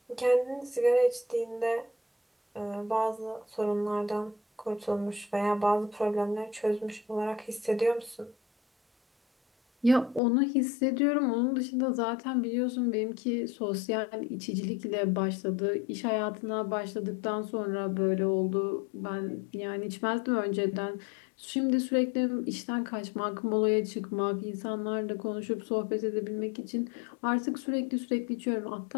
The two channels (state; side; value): drops out; right; at 10.2 s